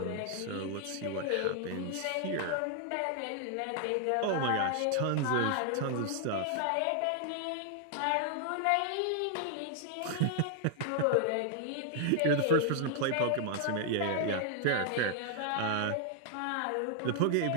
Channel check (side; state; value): both; different; correlation 0.00